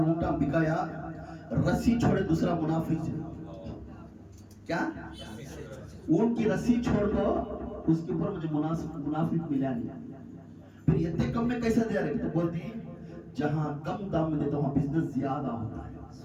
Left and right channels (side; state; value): both; identical; correlation 1.00